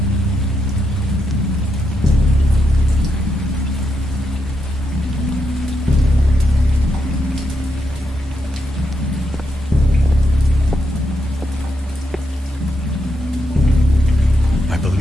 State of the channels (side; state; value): both; normal; correlation 0.82